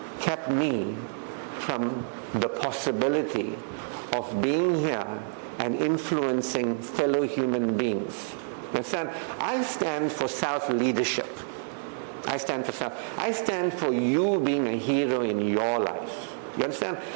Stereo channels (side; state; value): left; silent; digital silence